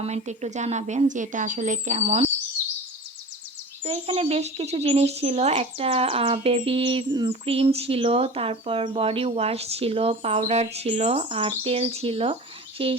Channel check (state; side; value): normal; both; correlation 0.35